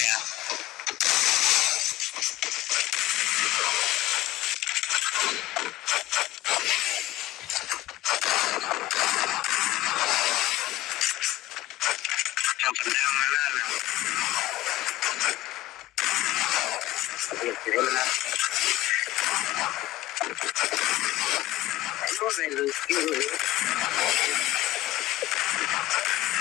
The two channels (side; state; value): right; quieter; 16.0 dB